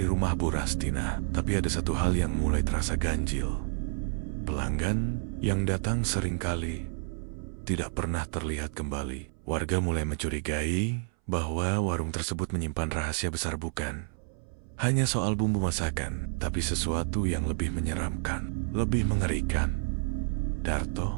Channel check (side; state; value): left; silent; 58 dB below the other